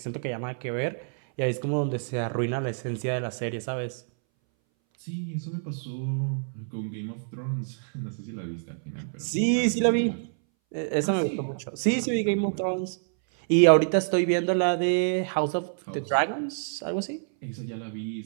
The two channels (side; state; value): left; silent; 60 dB below the other